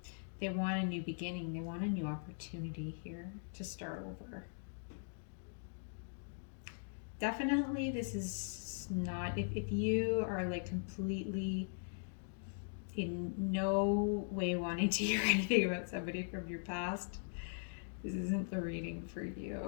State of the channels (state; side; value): silent; right; digital silence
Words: They want a new beginning. They want a new opportunity here to start over. Definitely, this is not, if you are like completely in no way wanting to hear anything about somebody from your past, this isn't the reading for